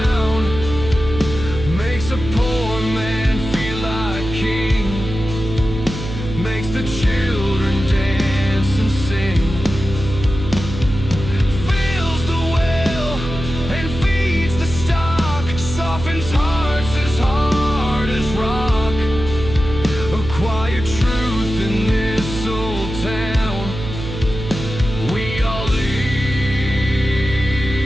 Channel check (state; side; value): noise; right; hum, 8 dB below the sound